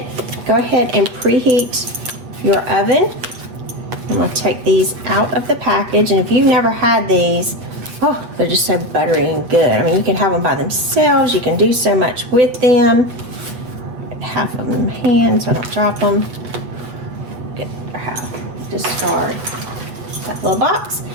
go ahead and preheat your oven. I'm going to take these out of the package, and if you've never had these, oh, they're just so buttery and good. I mean, you can have them by themselves. You can do so much with them. Half of them in hand so I don't drop them. Get half. Discard that little box.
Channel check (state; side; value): late; left; 8.2 ms